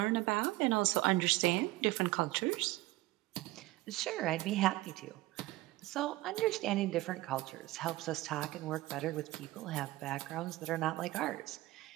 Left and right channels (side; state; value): left; quieter; 18.4 dB